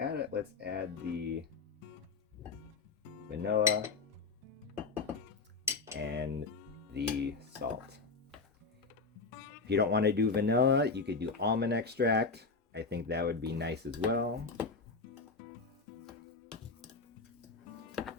it, let's add the vanilla and the salt. If you don't want to do vanilla, you could do almond extract. I think that would be nice as well.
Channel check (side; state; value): right; quieter; 4.3 dB